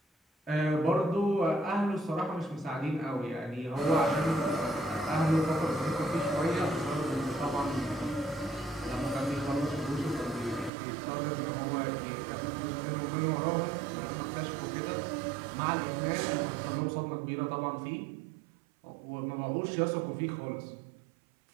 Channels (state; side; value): drops out; left; at 10.7 s